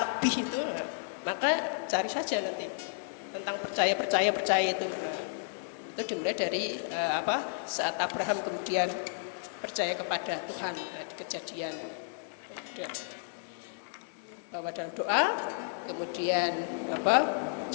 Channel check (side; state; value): right; silent; 56 dB below the other